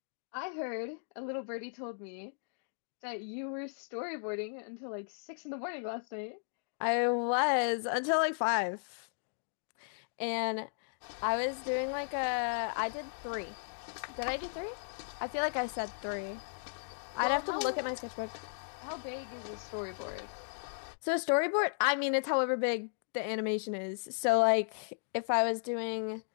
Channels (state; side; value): silent; right; digital silence